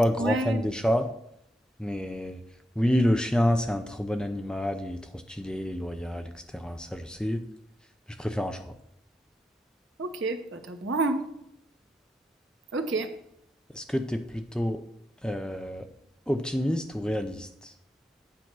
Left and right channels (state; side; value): normal; both; correlation 0.85